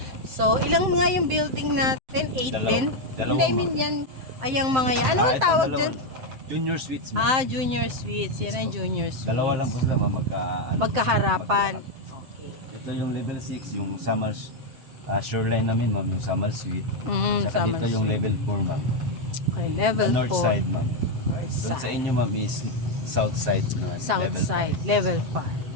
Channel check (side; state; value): left; late; 7.7 ms